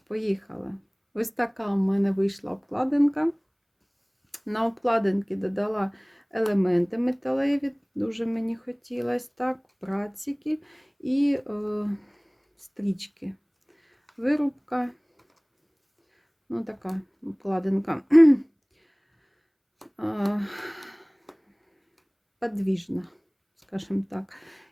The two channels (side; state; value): both; identical; correlation 1.00